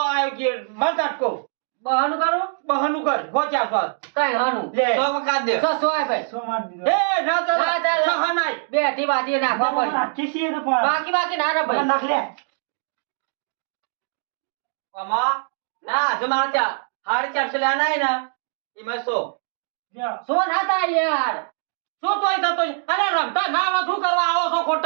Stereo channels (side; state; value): left; silent; digital silence